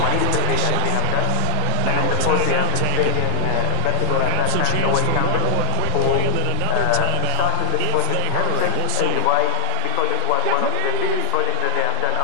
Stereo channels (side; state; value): both; different; correlation -0.01